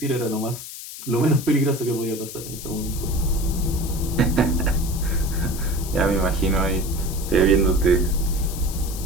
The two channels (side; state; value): left; noise; hiss, 11 dB below the sound